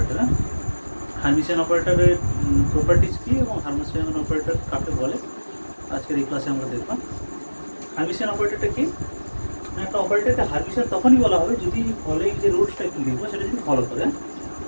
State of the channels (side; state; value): both; inverted; correlation -1.00